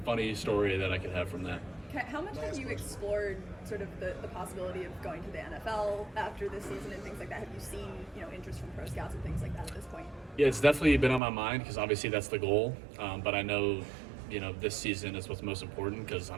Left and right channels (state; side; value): drops out; left; at 11.2 s